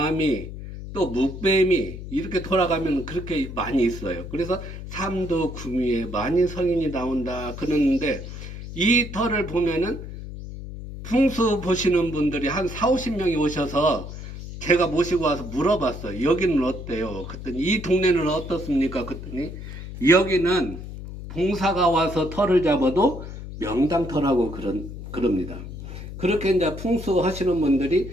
또 묵뱀이 이렇게 돌아가면 그렇게 많이 있어요. 그래서 삼두구미에 만인 성인이 나온다 그러는데 이 터를 보면은 풍수 보시는 분들이 한 40-50명이 오셔서 제가 모시고 와서 물어봤어요. 여기는 어때요? 그랬더니 이 동네는 어떻습니까? 그랬더니 여기는 봉사가 와서 터를 잡아도 명당터라고 그럽니다. 그렇게 이제 풍수 하시는 분들이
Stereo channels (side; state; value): left; noise; hum, 10 dB below the sound